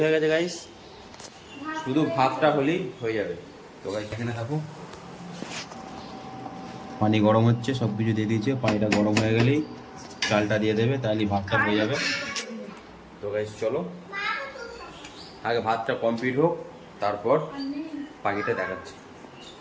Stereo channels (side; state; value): both; identical; correlation 1.00